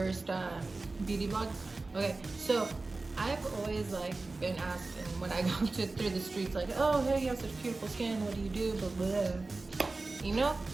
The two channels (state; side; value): quieter; left; 3.5 dB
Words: beauty vlog. Okay, so I've always been asked, and when I go through the streets, like, oh hey, you have such beautiful skin, what do you do, blah blah, you know.